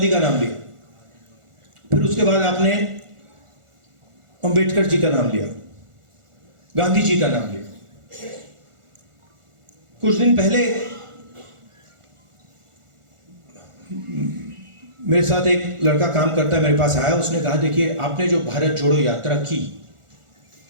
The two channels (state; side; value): late; left; 1.4 ms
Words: का नाम लिया, फिर उसके बाद आपने अंबेडकर जी का नाम लिया, गांधी जी का नाम लिया। कुछ दिन पहले मेरे साथ एक लड़का काम करता है, मेरे पास आया, उसने कहा देखिए आपने जो भारत जोड़ो यात्रा की,